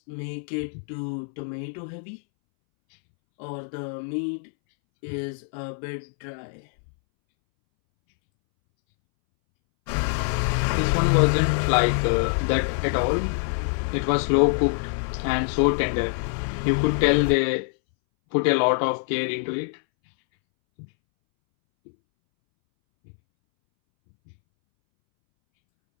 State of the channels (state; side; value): silent; right; 62 dB below the other